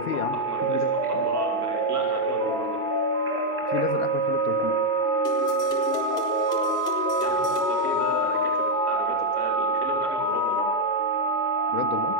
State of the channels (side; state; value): both; normal; correlation 0.01